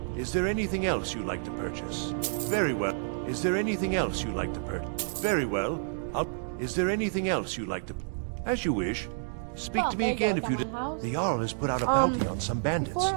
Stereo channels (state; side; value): silent; left; digital silence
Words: Is there anything else you'd like to purchase? Very well. Is there anything else you'd like to purchase? Very well. Is there anything else you'd like to... As you wish. Speak to me again if you... The Jarl has put out a bounty on some bandits. Before